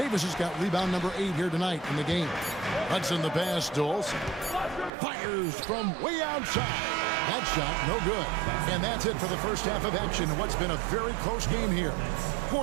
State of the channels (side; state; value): left; drops out; at 4.9 s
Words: has got rebound number 8 here tonight in the game. Hudson the pass, Doles. Fires from way outside. That shot, no good. And that's it for the first half of action in what's been a very close game here.